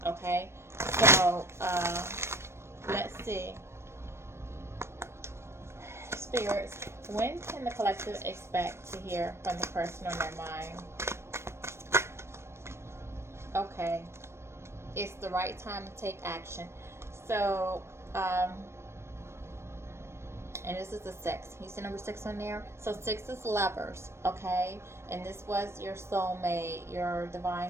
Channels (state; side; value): late; left; 0.13 ms